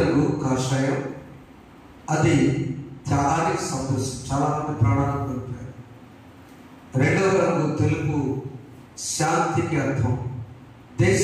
కాషాయం, అది త్యాగానికి సంతోషం, చాలా మంది ప్రాణాలను కోల్పోయారు. రెండవ రంగు తెలుపు, శాంతికి అర్థం,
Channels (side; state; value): both; identical; correlation 1.00